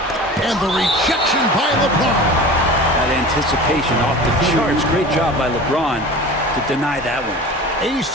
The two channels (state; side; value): normal; both; correlation 0.37